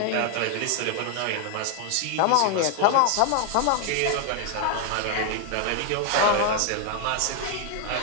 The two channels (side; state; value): both; different; correlation 0.00